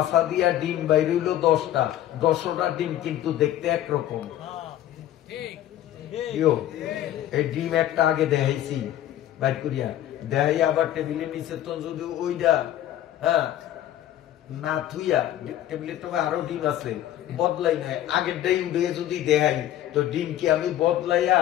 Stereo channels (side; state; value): right; quieter; 12.4 dB